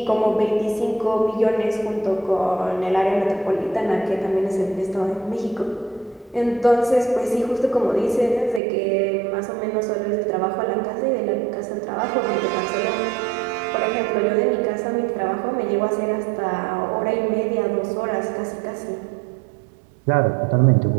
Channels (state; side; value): drops out; left; at 8.6 s